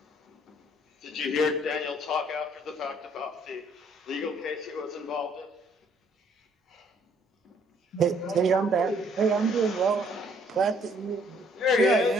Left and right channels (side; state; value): both; normal; correlation 0.64